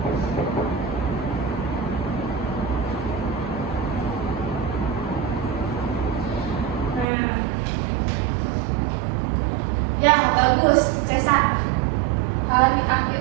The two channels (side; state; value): left; drops out; at 7.1 s